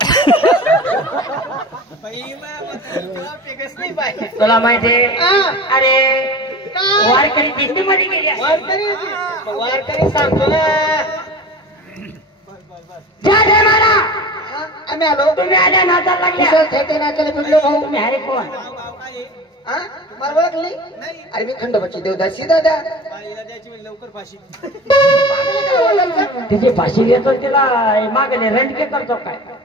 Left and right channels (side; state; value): both; normal; correlation 0.35